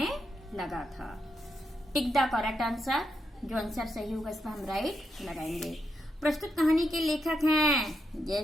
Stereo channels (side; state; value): both; normal; correlation 0.82